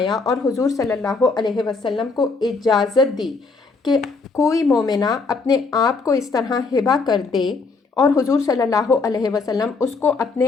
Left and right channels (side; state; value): right; quieter; 4.2 dB